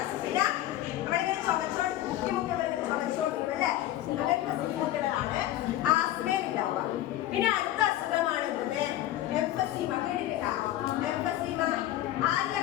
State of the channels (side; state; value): right; quieter; 13.9 dB